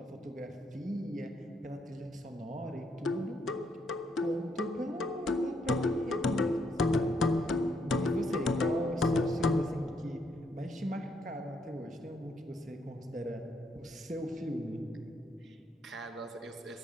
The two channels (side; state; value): both; normal; correlation 0.74